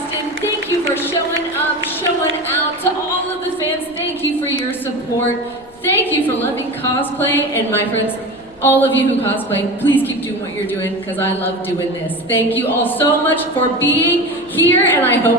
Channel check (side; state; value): left; noise; rumble, 28 dB below the sound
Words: Thank you for showing up, showing out. To all of the fans, thank you for your support. Thank you for loving cosplay. And my friends, all of you who cosplay, please keep doing what you're doing because I love doing this. Thank you all so much for being here, and I